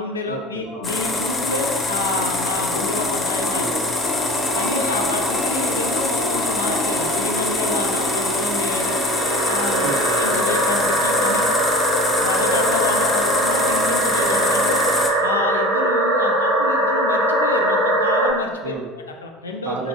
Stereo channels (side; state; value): both; normal; correlation 0.38